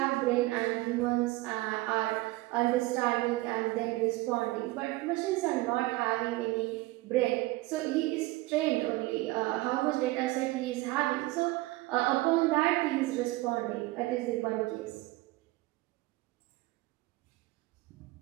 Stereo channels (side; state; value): left; quieter; 20.1 dB